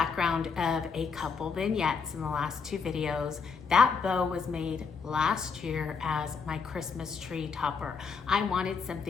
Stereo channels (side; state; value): right; quieter; 5.6 dB